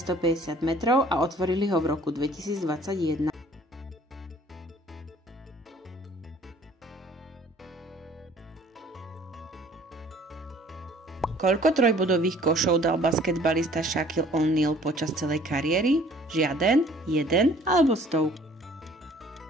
metrov a otvorili ho v roku 2021. Koľko trojbodových košov dal basketbalista Shaquille O'Neal počas celej kariéry? Žiaden, jeden alebo 100?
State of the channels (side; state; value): both; normal; correlation 0.55